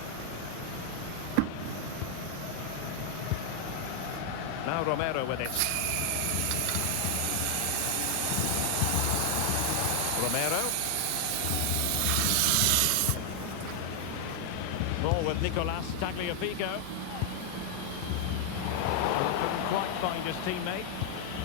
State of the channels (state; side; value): different; both; correlation 0.00